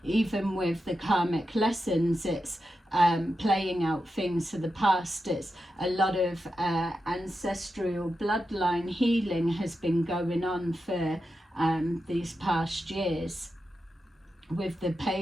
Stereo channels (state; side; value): normal; both; correlation 0.89